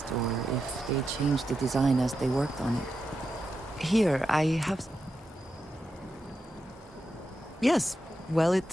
or if they changed the design as they worked on it. Here, I have... Yes, well, it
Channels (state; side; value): normal; both; correlation 0.88